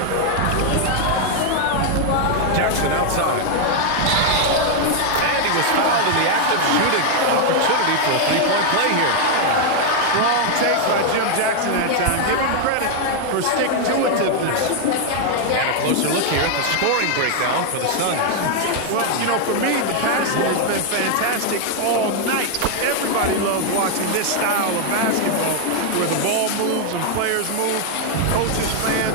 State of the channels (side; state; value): both; different; correlation 0.00